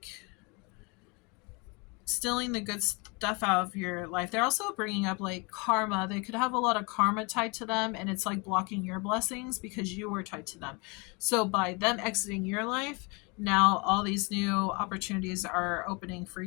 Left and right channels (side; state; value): right; quieter; 30.0 dB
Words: the good stuff out of your life. They're also bringing up like karma. They could have a lot of karma tied to them, and it's like blocking your blessings because you were tied to them. So by them exiting your life, now all these new opportunities are opening for